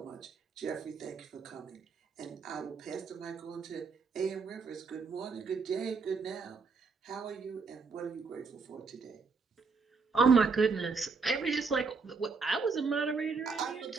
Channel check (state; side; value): quieter; left; 4.7 dB